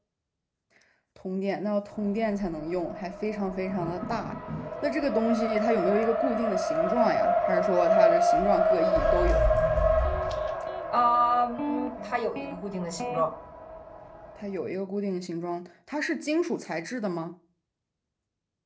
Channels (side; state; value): both; identical; correlation 1.00